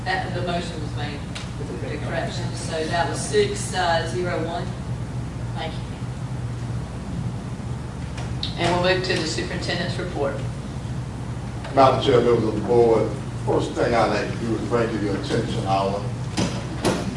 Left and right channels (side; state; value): both; identical; correlation 1.00